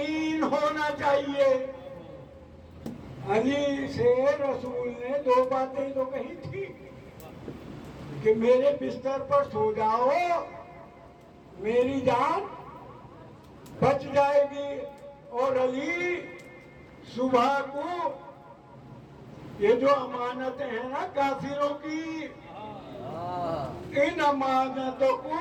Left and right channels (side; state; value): both; identical; correlation 1.00